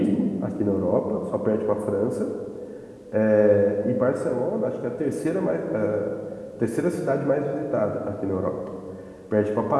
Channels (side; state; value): both; identical; correlation 1.00